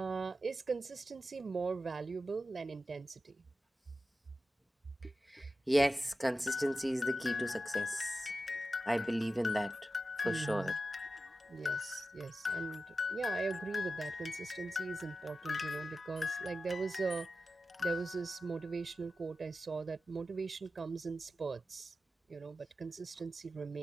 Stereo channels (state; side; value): normal; both; correlation 0.92